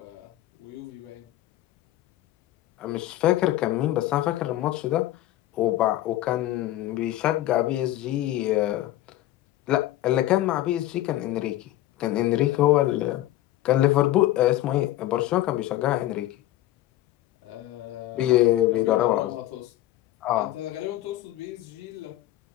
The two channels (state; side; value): quieter; right; 14.9 dB